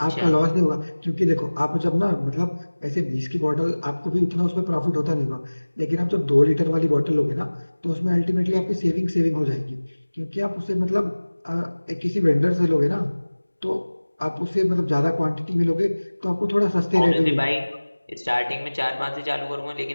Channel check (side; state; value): both; inverted; correlation -1.00